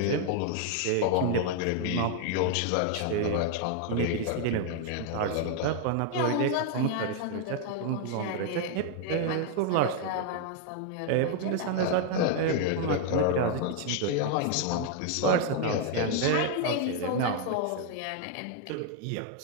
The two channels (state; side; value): different; both; correlation 0.00